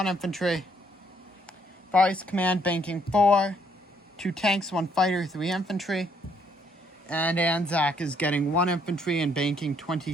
infantry. Far East Command banking 4, 2 tanks, 1 fighter, 3 infantry. And Anzac is getting 1 infantry and banking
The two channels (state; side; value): normal; both; correlation 0.69